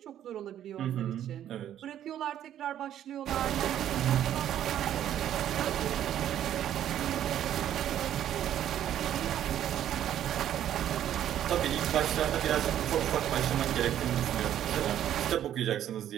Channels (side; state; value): left; quieter; 11.0 dB